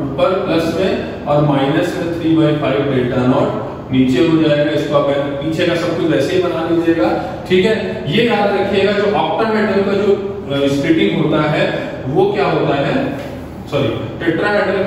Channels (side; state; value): both; identical; correlation 1.00